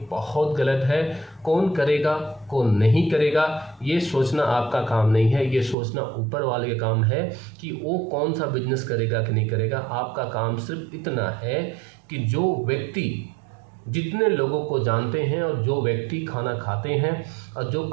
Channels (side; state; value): left; drops out; at 5.8 s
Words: बहुत गलत है। कौन करेगा कौन नहीं करेगा ये सोचना आपका काम नहीं है, ये सोचना ऊपर वाले का काम है कि वो कौन सा बिजनेस करेगा कि नहीं करेगा। आपका काम सिर्फ इतना है कि जो व्यक्ति जितने लोगों को जानते हैं, और जो व्यक्ति खाना खाते हैं और जो